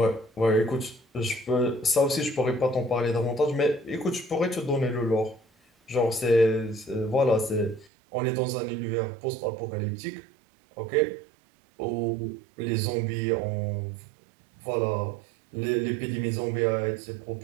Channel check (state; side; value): drops out; left; at 7.9 s